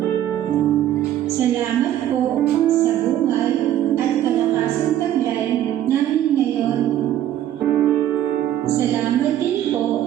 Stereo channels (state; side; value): quieter; left; 11.9 dB